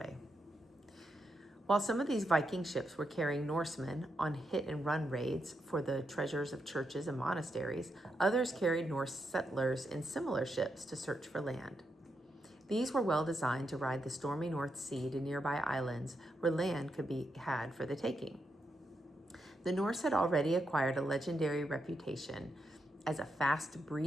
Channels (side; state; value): both; normal; correlation 0.83